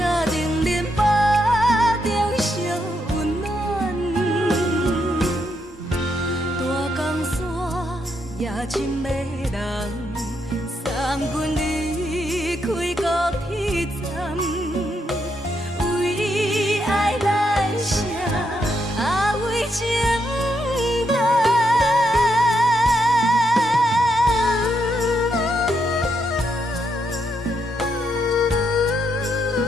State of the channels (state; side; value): normal; both; correlation 0.79